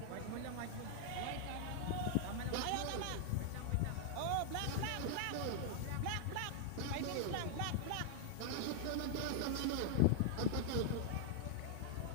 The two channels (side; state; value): both; different; correlation 0.00